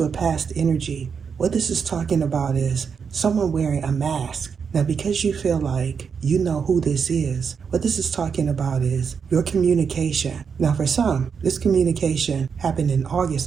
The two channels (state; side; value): quieter; left; 6.3 dB